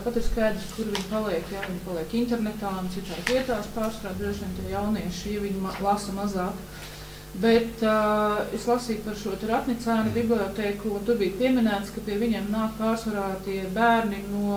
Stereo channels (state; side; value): identical; both; correlation 1.00